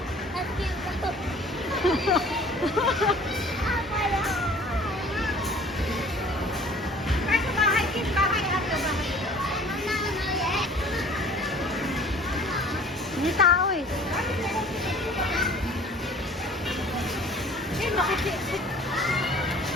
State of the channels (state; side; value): normal; both; correlation 0.49